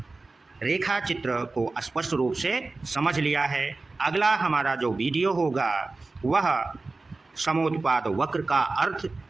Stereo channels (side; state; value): left; quieter; 3.5 dB